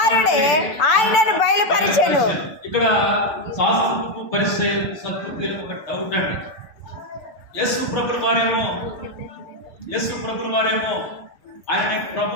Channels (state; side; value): late; right; 6.9 ms